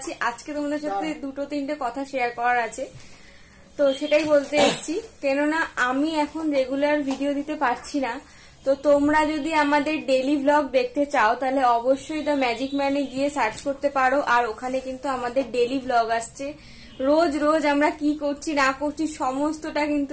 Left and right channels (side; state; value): both; identical; correlation 1.00